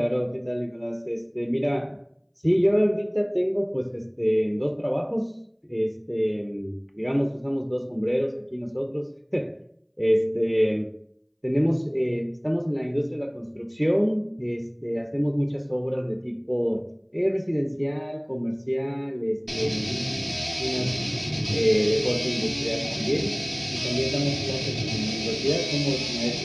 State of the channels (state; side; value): identical; both; correlation 1.00